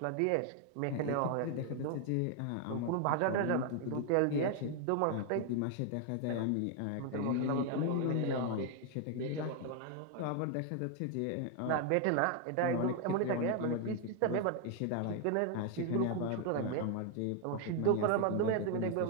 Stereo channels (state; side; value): different; both; correlation 0.01